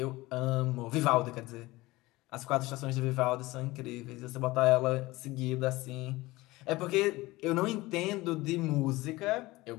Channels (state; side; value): quieter; right; 20.0 dB